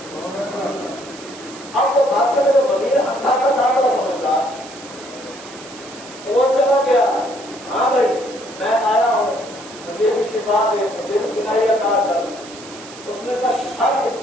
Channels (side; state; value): right; noise; hiss, 17 dB below the sound